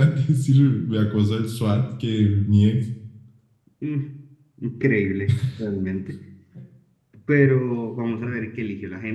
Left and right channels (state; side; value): identical; both; correlation 1.00